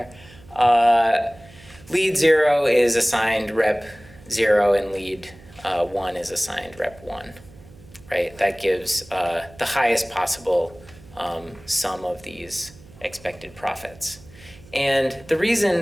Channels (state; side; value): noise; right; hum, 22 dB below the sound